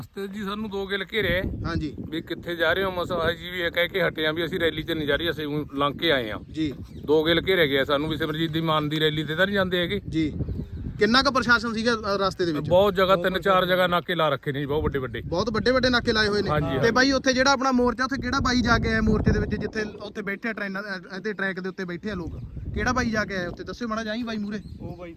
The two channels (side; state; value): both; identical; correlation 1.00